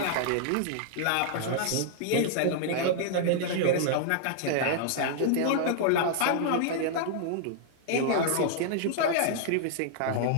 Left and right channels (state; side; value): different; both; correlation -0.01